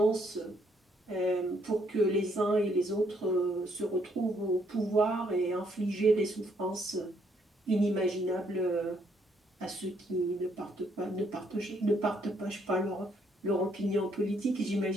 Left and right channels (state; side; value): normal; both; correlation 0.70